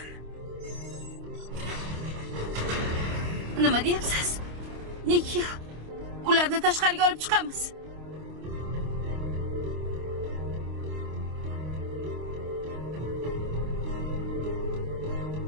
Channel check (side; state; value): left; late; 26 ms